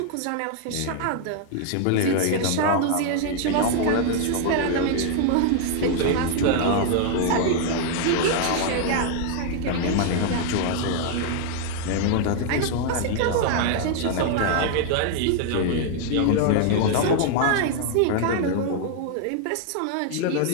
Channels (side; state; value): both; different; correlation 0.00